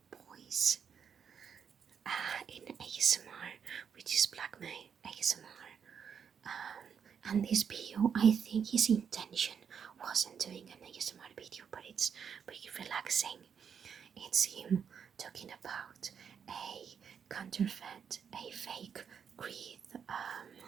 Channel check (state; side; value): quieter; left; 7.2 dB